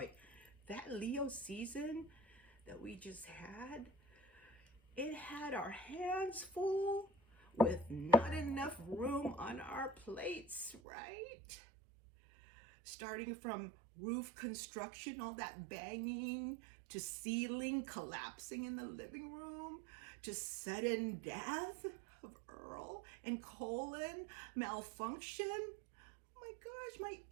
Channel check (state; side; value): drops out; left; at 10.8 s